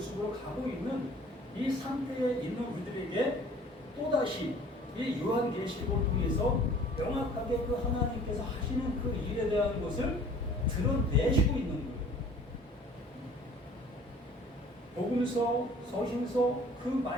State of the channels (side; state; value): both; normal; correlation 0.50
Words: 가고 있는 이 상태에 있는 우리들에게 또다시 이 요한계시록을 통해서 명확하게 그 하나님께서 하시는 그 일에 대한 것을 드러내시고 있는 거예요. 복음서, 서신서 그